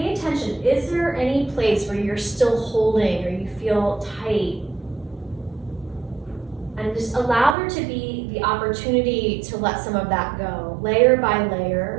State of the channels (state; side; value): drops out; left; at 7.6 s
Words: attention. Is there any place where you're still holding or you feel tight? And just allow there to be the opportunity to let some of that go, layer by